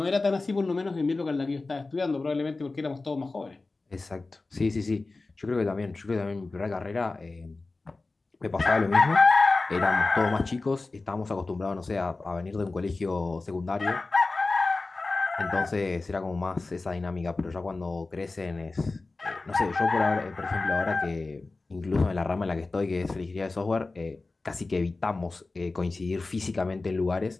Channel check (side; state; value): right; quieter; 3.5 dB